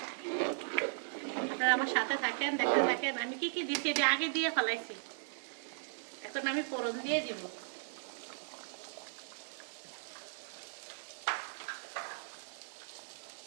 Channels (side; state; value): left; silent; digital silence